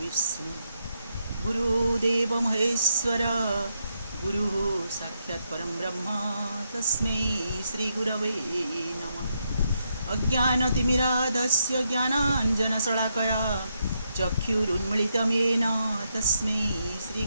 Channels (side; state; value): both; inverted; correlation -0.80